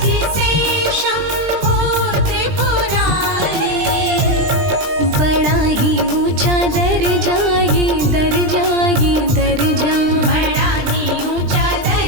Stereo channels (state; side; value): late; left; 20 ms